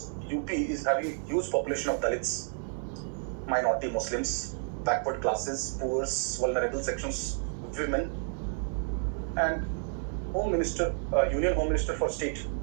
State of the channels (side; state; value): left; silent; 57 dB below the other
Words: UP is having a huge population of Dalits, minority Muslims, backward classes, poor, vulnerable sections, women, and Home Minister, Union Home Minister for State,